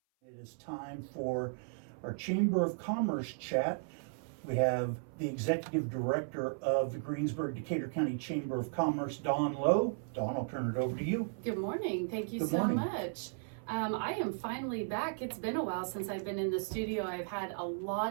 It is time for our Chamber of Commerce chat. We have the Executive Director of the Greensburg-Decatur County Chamber of Commerce, Dawn Lowe. Dawn, I'll turn it over to you. Good morning. Thank you Good so morning. much. I am finally back. It's been a while since I've been in the studio. I've had a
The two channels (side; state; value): left; silent; 54 dB below the other